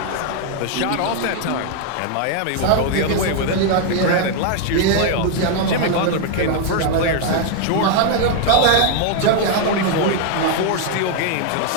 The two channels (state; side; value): different; both; correlation 0.00